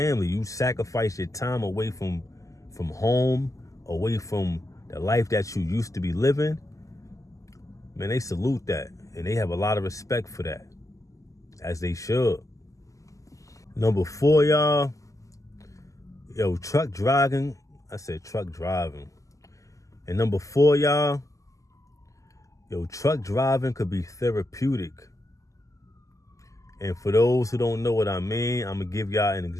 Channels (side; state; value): right; late; 0.16 ms